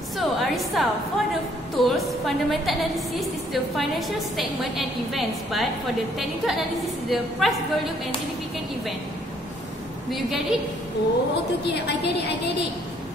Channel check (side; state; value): both; normal; correlation 0.65